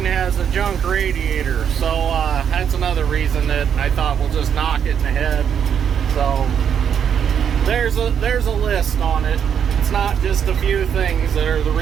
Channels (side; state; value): left; quieter; 8.1 dB